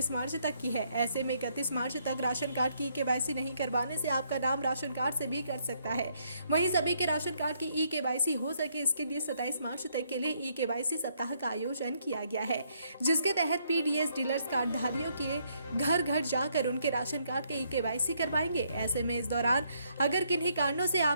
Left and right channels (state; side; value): inverted; both; correlation -0.72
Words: मार्च तक की है। ऐसे में 31 मार्च तक राशन कार्ड की ई-केवाईसी नहीं करवाने से आपका नाम राशन कार्ड से भी कट सकता है। वहीं सभी के राशन कार्ड की ई-केवाईसी हो सके इसके लिए 27 मार्च तक के लिए ई-केवाईसी सप्ताह का आयोजन किया गया है, जिसके तहत पीडीएस डीलर्स कार्डधारियों के घर घर जाकर उनके राशन कार्ड के ई-केवाईसी करवाएंगे। ऐसे में इस दौरान अगर किन्हीं कारणों से